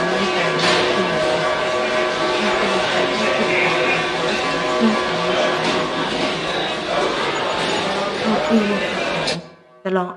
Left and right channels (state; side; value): identical; both; correlation 1.00